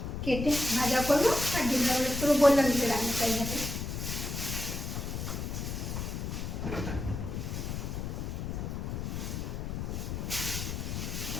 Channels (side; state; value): left; noise; rumble, 4 dB below the sound